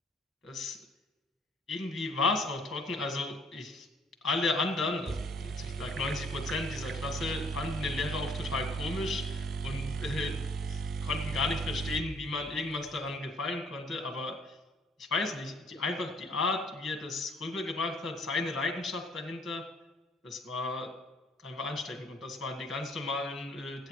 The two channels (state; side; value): normal; both; correlation 0.62